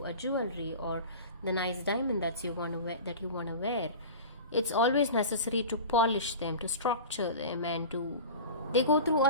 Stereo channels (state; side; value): inverted; both; correlation -0.34